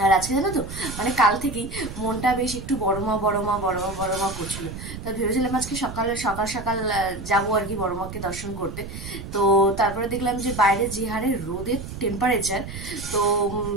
আর আজকে জানো তো, মানে কাল থেকেই মনটা বেশ একটু বড়মা করছিল। তো ভেবেছিলাম আজকে সকাল সকাল যাবো আর কি বড়মাকে দর্শন করতে। তো তারপরে দেখলাম যে বাইরে যে হারে রোদের টেম্পারেচার, তো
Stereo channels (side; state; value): right; noise; rumble, 10 dB below the sound